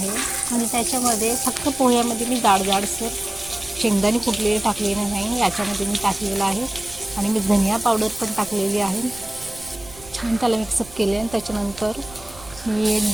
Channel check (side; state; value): right; noise; rumble, 19 dB below the sound